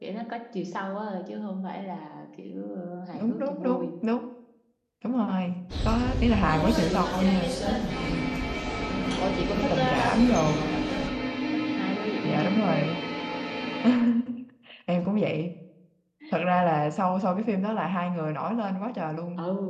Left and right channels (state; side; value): identical; both; correlation 1.00